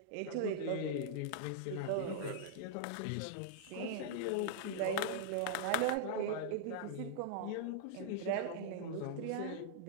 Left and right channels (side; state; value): both; different; correlation -0.02